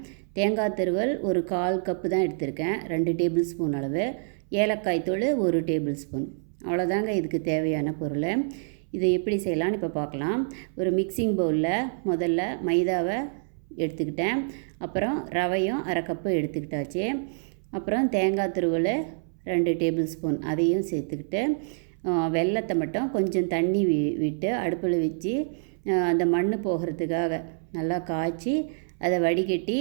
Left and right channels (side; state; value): left; silent; 60 dB below the other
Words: தேங்காய் துருவல் ஒரு 1/4 கப்பு தான் எடுத்திருக்கேன், 2 டேபிள் ஸ்பூன் அளவு. ஏலக்காய் தூள் 1 டேபிள் ஸ்பூன். அவ்வளோதாங்க இதுக்கு தேவையான பொருள். இதை எப்படி செய்யலான்னு இப்போ பார்க்கலாம். ஒரு மிக்சிங் பவுலில் முதல்ல மைதாவை எடுத்துக்கிட்டேன், அப்புறம் ரவையும் அரை கப்பு எடுத்துக்கிட்டாச்சு. அப்புறம் தேங்காய் துருவல் 2 டேபிள் ஸ்பூன் அதையும் சேர்த்துக்கிட்டு, வெல்லத்தை மட்டும் கொஞ்சம் தண்ணி விட்டு அடுப்பில் வச்சு அந்த மண் போகிறதுக்காக நல்லா காய்ச்சி அதை வடிகட்டி